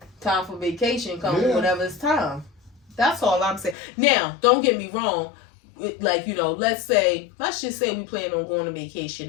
time for vacation coming whenever it's time. That's all I'm saying. Now, don't get me wrong. Like, let's just say we plan on going on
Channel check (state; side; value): drops out; right; at 3.8 s